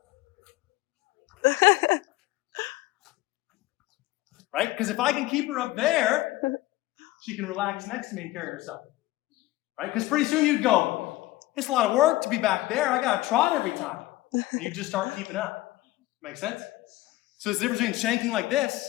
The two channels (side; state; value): right; quieter; 18.0 dB